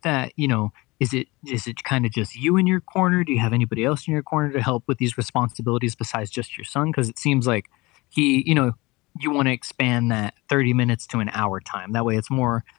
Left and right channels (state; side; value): quieter; right; 22.8 dB